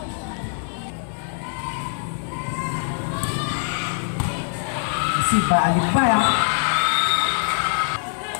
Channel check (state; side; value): silent; right; 63 dB below the other